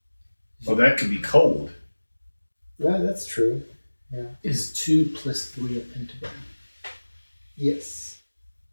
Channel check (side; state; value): both; inverted; correlation -1.00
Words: Oh, that could be cold. No, that's true. Yeah. Is 2 plus 3 a pentagram? Yes.